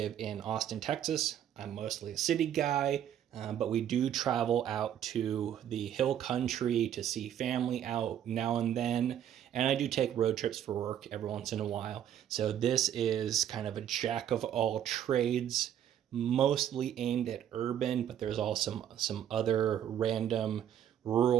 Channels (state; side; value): quieter; left; 10.2 dB